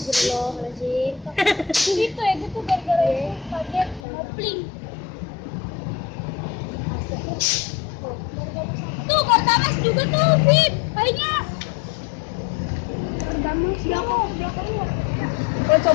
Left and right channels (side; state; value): right; drops out; at 4.0 s